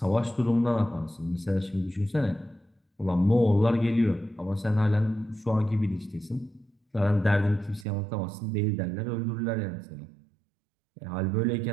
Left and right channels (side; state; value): left; drops out; at 7.9 s